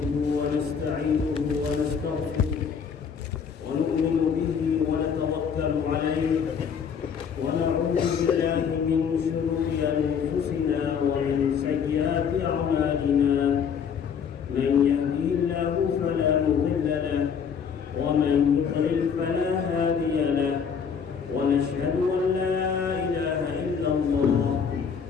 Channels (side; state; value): right; quieter; 6.8 dB